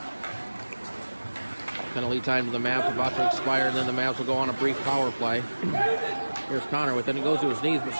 Penalty time to the Mavs about to expire, and then the Mavs will go on a brief power play. Here's Connor with it. He goes to his knees, but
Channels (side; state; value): both; inverted; correlation -1.00